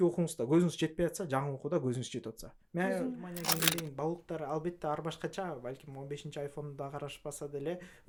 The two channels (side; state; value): both; identical; correlation 1.00